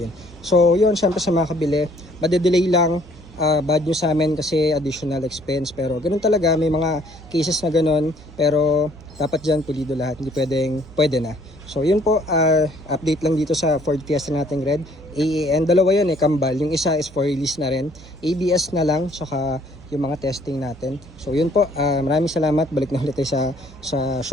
So yun, syempre sa mga kabili, madedelay lang. Bad news sa amin kasi additional expense, pero ganun talaga, may mga cases na ganun, pero dapat dyan pulido lahat, hindi pwede na. So yun po, update lang dito sa Ford Fiesta nating red. AAN, dalawa yun eh, kambal, yung isa is for release na rin, ABS na lang, tsaka yung mga testing natin. So yun po, maraming salamat, balik na ulit tayo sa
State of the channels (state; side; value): noise; right; hum, 20 dB below the sound